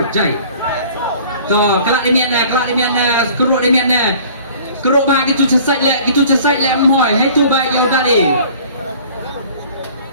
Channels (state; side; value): inverted; both; correlation -0.49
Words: jai. To, kelak demian na, keruk demian na. Keruk bah gitu cesai lek mohoi, hai tu bah yo dah ni.